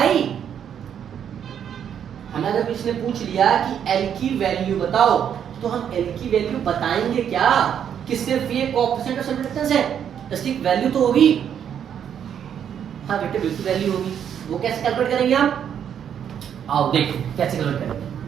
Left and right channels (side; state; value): left; quieter; 8.7 dB